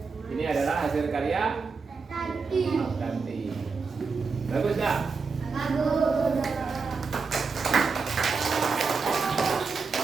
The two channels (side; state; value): left; quieter; 4.8 dB